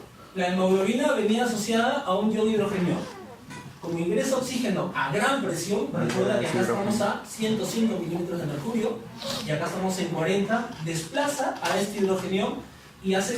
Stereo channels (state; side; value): identical; both; correlation 1.00